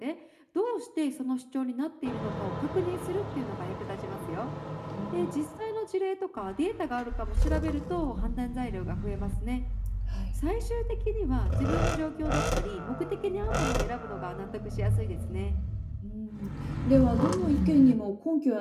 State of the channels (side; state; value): both; identical; correlation 1.00